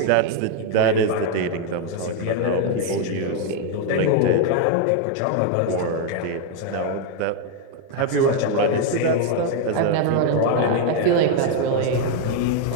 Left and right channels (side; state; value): both; different; correlation 0.01